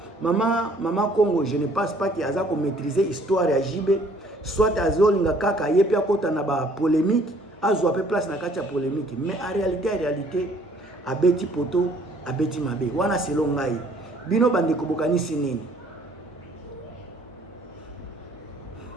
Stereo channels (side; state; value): both; normal; correlation 0.59